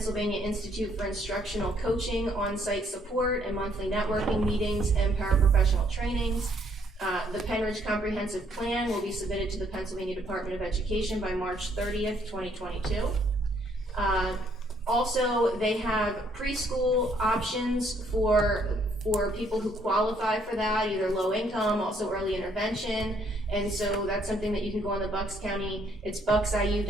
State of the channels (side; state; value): both; normal; correlation 0.68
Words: Institute for Instructional Coaching on-site support and monthly networking meetings and paraprofessional trainings. The Penridge Comprehensive Plan will be submitted to the Pennsylvania Department of Education by March 30th, 2022. Also, they have preschool options for people who qualify for that, either low income, also early intervention. And so that's something that you can go on the Bucks County, it's